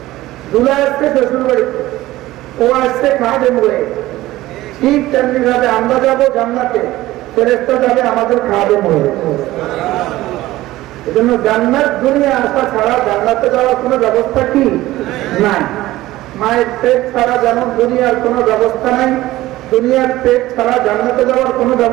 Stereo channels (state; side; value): quieter; left; 16.7 dB